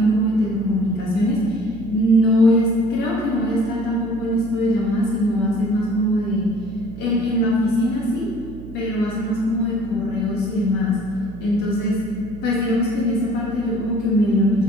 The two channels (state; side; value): noise; right; hum, 15 dB below the sound